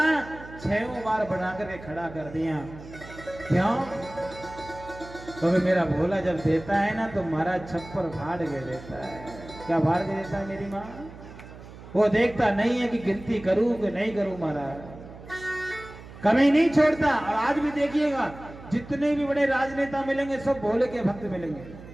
6 बार बना करके खड़ा कर दिया। क्यों? क्योंकि मेरा भोला जब देता है ना तो महाराज छप्पर फाड़ के देता है। क्या फाड़ के देता है मेरी माँ? वो देखता नहीं है कि गिनती करूं कि नहीं करूं। महाराज कमी नहीं छोड़ता। और आज भी देखिएगा जितने भी बड़े राजनेता मिलेंगे सब भोले के भक्त मिलेंगे।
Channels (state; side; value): noise; right; hum, 16 dB below the sound